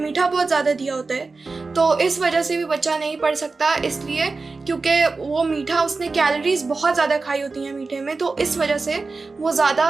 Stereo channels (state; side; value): quieter; left; 4.0 dB